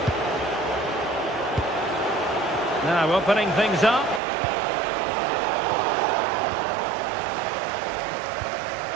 Now opening things up.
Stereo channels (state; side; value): drops out; left; at 4.2 s